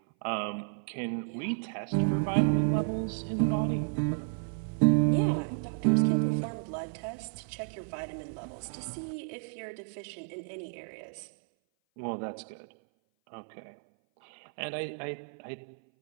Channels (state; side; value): silent; left; 57 dB below the other